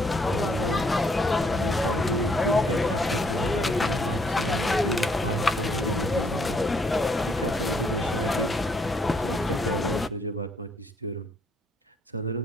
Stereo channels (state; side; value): normal; both; correlation 0.69